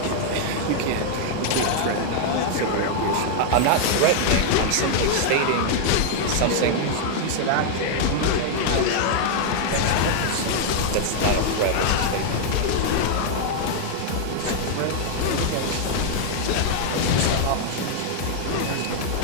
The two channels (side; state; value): both; different; correlation 0.00